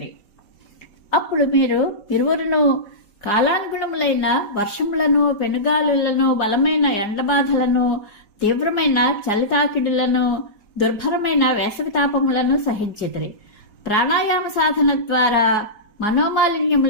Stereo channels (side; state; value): right; late; 4.8 ms